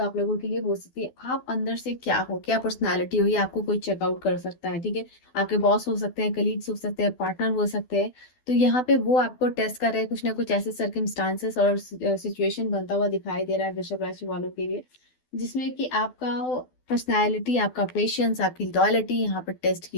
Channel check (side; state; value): right; late; 12 ms